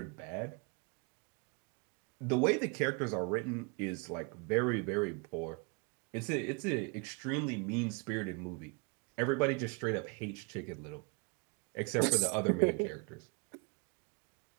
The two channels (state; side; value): quieter; left; 33.6 dB